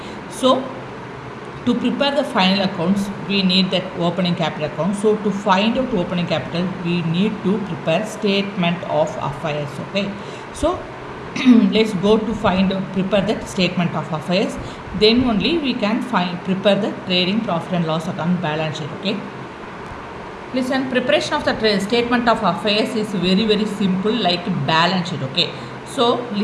so to prepare the final accounts we need that opening capital account. So to find out opening capital we need to prepare statement of affairs. Okay, so let's go to prepare the statement of affairs. Then only we can prepare the trading profit and loss account balance sheet. Okay. Listen, preparation of the statement of affairs is very simple, like balance sheet. Okay. So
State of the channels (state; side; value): identical; both; correlation 1.00